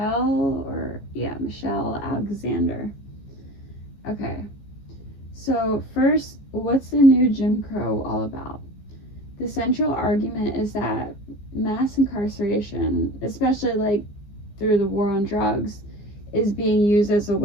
Alexander. Okay, so first, what's the new Jim Crow all about? The central argument is that mass incarceration, especially like through the war on drugs, is being used as a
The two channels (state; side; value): late; right; 15 ms